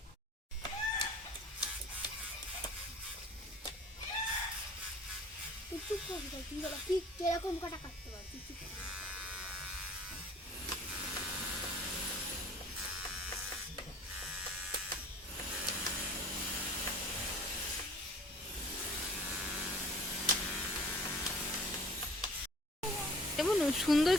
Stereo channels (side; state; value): both; normal; correlation 0.49